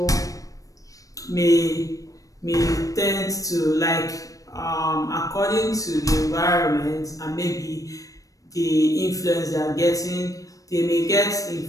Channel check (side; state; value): right; late; 0.16 ms